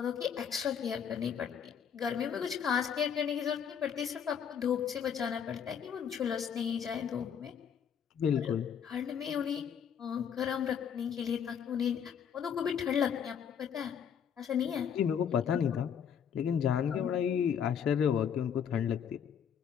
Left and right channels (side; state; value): right; quieter; 7.9 dB